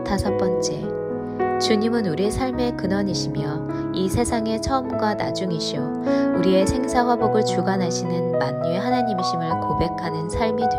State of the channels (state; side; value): identical; both; correlation 1.00